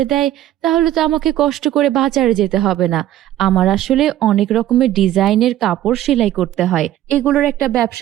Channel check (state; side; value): quieter; left; 13.1 dB